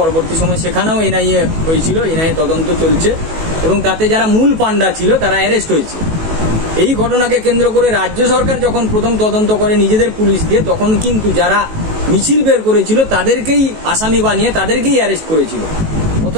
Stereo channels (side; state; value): left; late; 19 ms